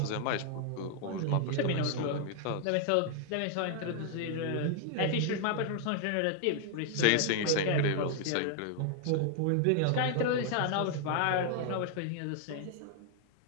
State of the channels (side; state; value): both; different; correlation 0.00